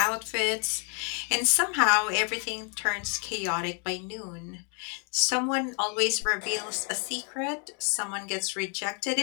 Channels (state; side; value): quieter; right; 39.9 dB